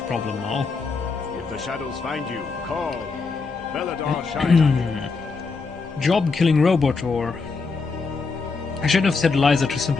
problem now. If the shadows find you, call. Bellador shines on you. Job killing robot or... I shouldn't have said Eliza to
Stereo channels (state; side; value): quieter; right; 4.5 dB